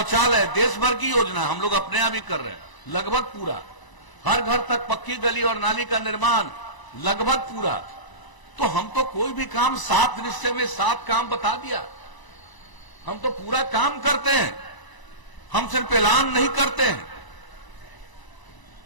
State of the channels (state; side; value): late; right; 1.0 ms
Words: देश भर की योजना हम लोग अपने यहां भी कर रहे हैं, लगभग पूरा। हर घर तक पक्की गली और नाली का निर्माण लगभग पूरा। तो हम तो कोई भी काम 7 निश्चय में 7 काम बता दिया, हम तो पूरा काम करते हैं। हम सिर्फ ऐलान नहीं करते हैं,